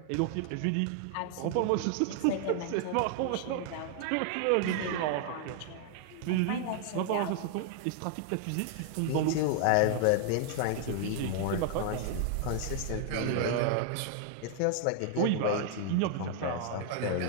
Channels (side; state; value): both; different; correlation 0.00